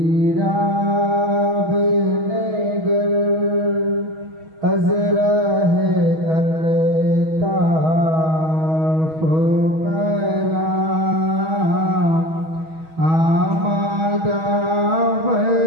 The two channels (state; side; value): late; left; 6.3 ms